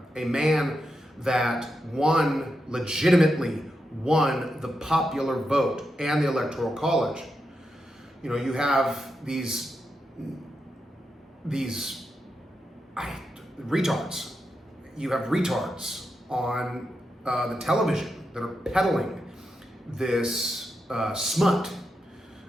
a man that legitimately won the popular vote and the Electoral College. You have these retards. You have retards on the television that are peddling this smut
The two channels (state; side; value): normal; both; correlation 0.86